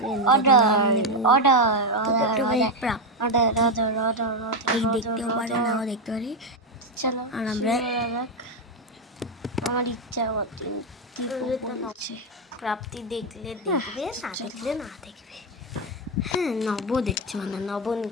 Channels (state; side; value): normal; both; correlation 0.07